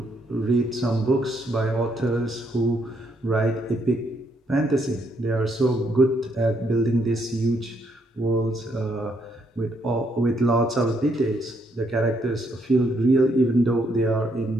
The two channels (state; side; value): normal; both; correlation 0.73